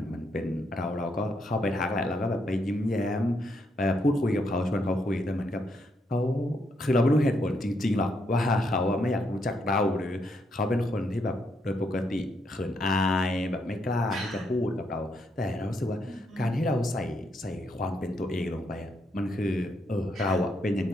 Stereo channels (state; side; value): normal; both; correlation 0.77